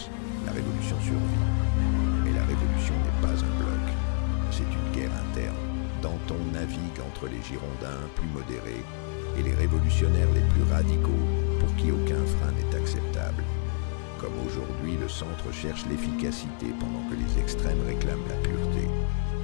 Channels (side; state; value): right; silent; 60 dB below the other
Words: la révolution survit. Mais la révolution n'est pas un bloc, c'est une guerre interne. Danton navigue entre les Girondins plus modérés et les révolutionnaires les plus radicaux pour qui aucun frein n'est acceptable. Comme aujourd'hui, le centre cherche l'efficacité pendant que les extrêmes réclament la pureté.